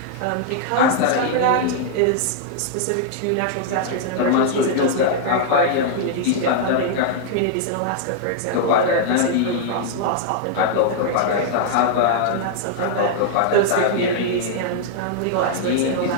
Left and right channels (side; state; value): both; different; correlation -0.01